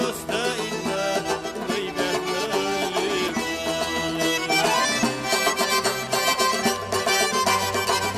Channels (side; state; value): left; noise; hum, 25 dB below the sound